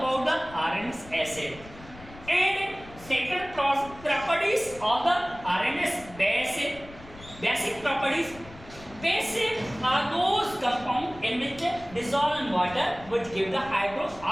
the RNS acid. And second properties of the RNS base, basic properties. Basic are those compounds in which dissolve in water which give the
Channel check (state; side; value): noise; left; rumble, 19 dB below the sound